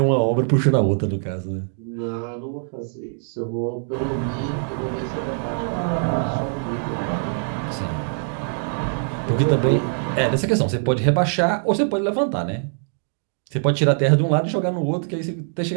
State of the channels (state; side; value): silent; left; 56 dB below the other